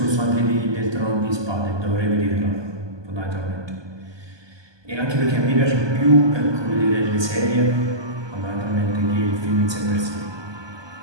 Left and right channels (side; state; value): left; late; 1.2 ms